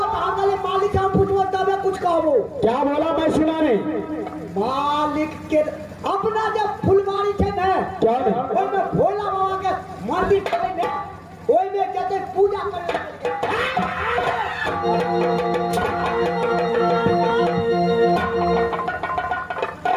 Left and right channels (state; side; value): identical; both; correlation 1.00